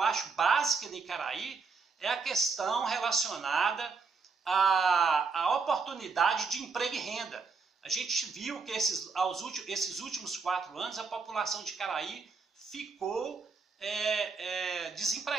acho básica em Caraí é a questão relacionada à oportunidade de emprego e renda. A gente viu que esses últimos 4 anos a população de Caraí ficou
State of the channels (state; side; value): quieter; left; 4.7 dB